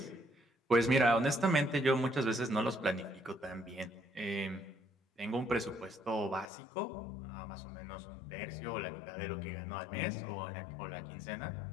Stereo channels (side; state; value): right; drops out; at 6.5 s